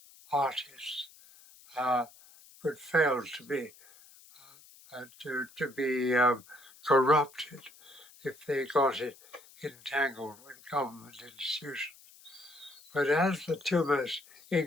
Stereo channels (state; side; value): noise; left; hiss, 23 dB below the sound